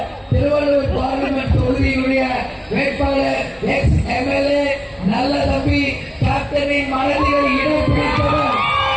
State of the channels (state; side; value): identical; both; correlation 1.00